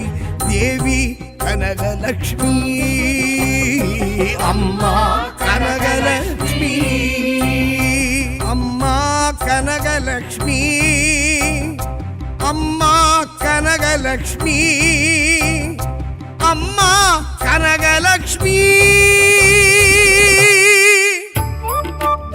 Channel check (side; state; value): both; identical; correlation 1.00